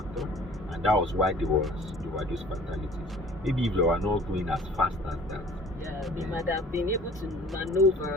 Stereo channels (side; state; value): both; normal; correlation 0.49